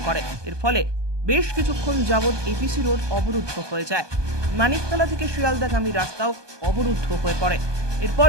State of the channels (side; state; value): left; late; 1.2 ms